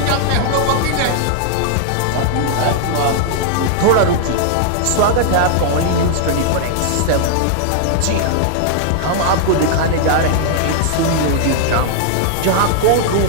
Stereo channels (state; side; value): different; both; correlation -0.01